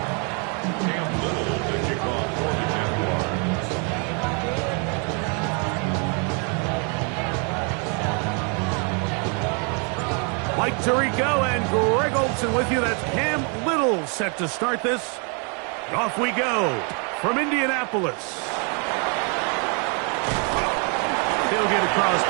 Mike Tirico and Greg Olson with you. That's Cam Little set to start this. Off we go from Indianapolis. They'll get across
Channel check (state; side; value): quieter; left; 36.7 dB